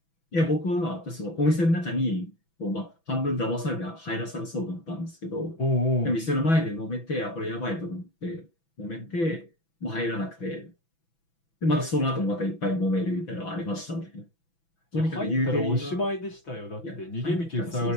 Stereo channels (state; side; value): late; right; 6.0 ms